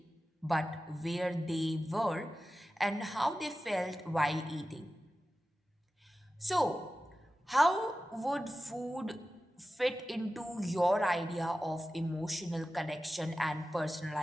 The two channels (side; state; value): both; normal; correlation 0.94